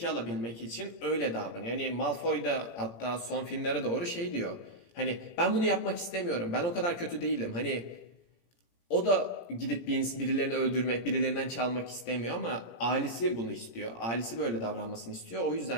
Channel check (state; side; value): late; right; 17 ms